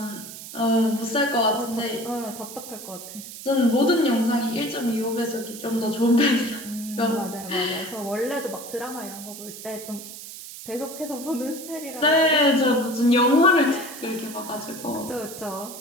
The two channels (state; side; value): noise; right; hiss, 13 dB below the sound